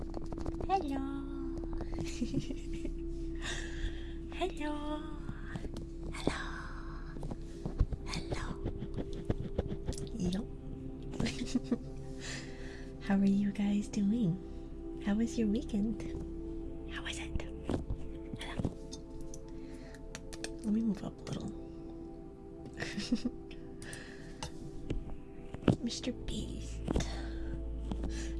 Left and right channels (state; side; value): identical; both; correlation 1.00